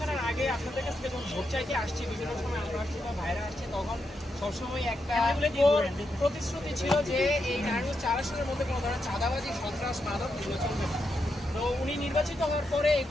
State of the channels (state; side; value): normal; both; correlation 0.84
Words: আগে আপনাদের কাছ থেকে যখন ভোট চাইতে আসছি বিভিন্ন সময় আমরা আসছি বা ভাইরা আসছি তখন সবসময় একটা প্রতিশ্রুতি ছিল যে এই নারায়ণগঞ্জ 4 আসনের মধ্যে কোনো ধরনের চাঁদাবাজি সন্ত্রাস মাদক এগুলো চলবে না। তো উনি নির্বাচিত হওয়ার পরে